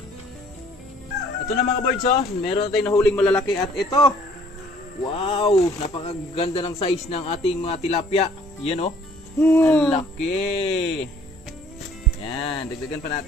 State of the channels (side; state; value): both; normal; correlation 0.58